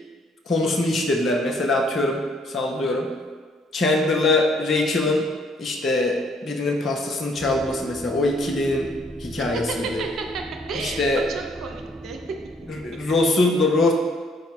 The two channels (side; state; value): both; normal; correlation 0.65